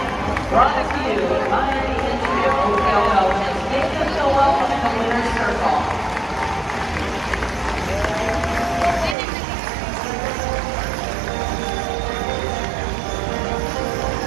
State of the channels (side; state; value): left; drops out; at 9.2 s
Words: brought to you by the entry of Oakdale Belgians. Give them a welcome in the winner's circle.